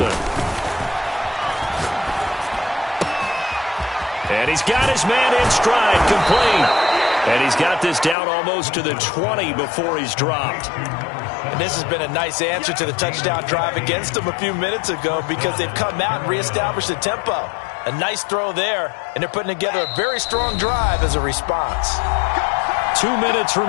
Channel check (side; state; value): right; drops out; at 8.2 s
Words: And he's got his man in stride, complete. And he's got this down almost to the 20 before he's dropped. And this has been a nice answer to the touchdown drive against them a few minutes ago, because they've come out and reestablished the tempo. A nice throw there, and they're putting together a very strong drive as a response. 2 minutes